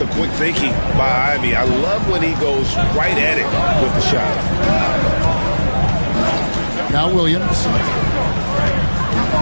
quick thinking by Ivy? I love when he goes right at it with the shot. Now Williams.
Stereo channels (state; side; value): inverted; both; correlation -1.00